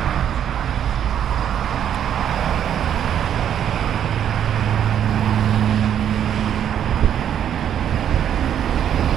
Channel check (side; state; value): left; quieter; 9.6 dB